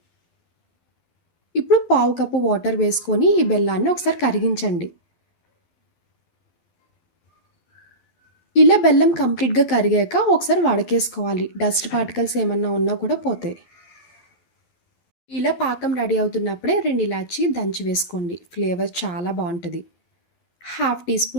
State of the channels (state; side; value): late; right; 12 ms